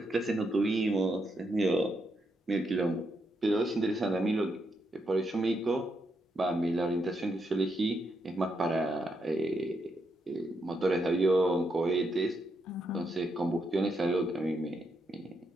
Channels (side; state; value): both; normal; correlation 0.80